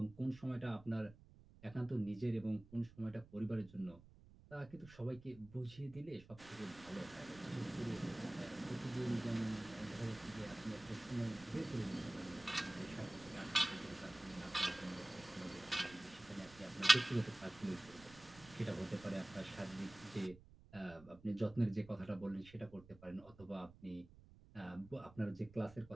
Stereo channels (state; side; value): noise; right; rumble, 21 dB below the sound